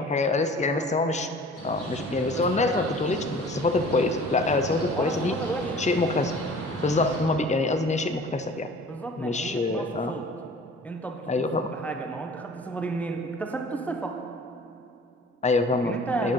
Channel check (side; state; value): both; normal; correlation 0.46